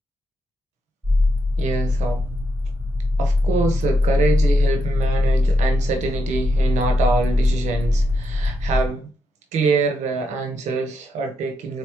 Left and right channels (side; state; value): both; normal; correlation 0.82